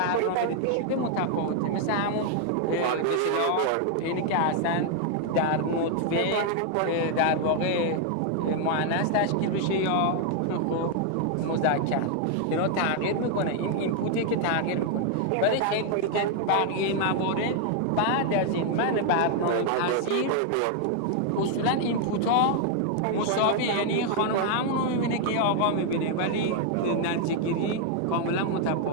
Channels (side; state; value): both; different; correlation 0.00